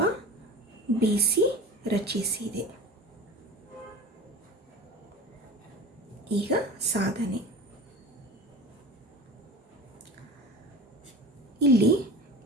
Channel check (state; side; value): normal; both; correlation 0.34